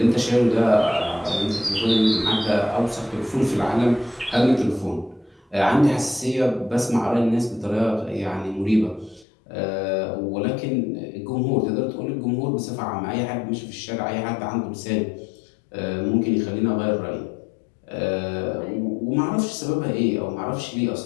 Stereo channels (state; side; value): drops out; right; at 9.2 s